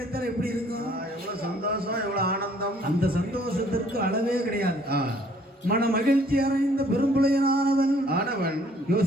எப்படி இருக்கும்? எவ்வளவு சந்தோஷம், எவ்வளவு ஆனந்தம். அந்த சந்தோஷத்திற்கு அளவே கிடையாது. மன மகிழ்ச்சி அடைந்த பெரும்புலையனானவன்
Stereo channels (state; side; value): normal; both; correlation 0.60